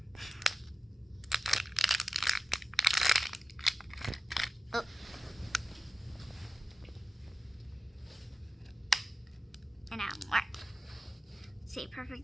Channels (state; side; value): normal; both; correlation 0.94